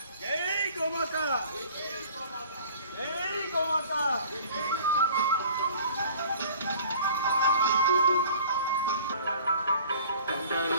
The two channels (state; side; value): inverted; both; correlation -0.48